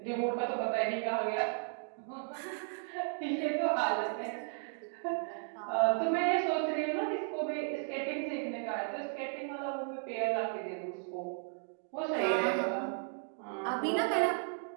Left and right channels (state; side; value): silent; left; 55 dB below the other